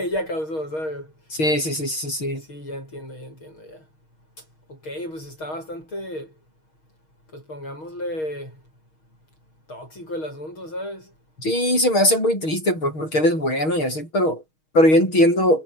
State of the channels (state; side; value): late; right; 6.4 ms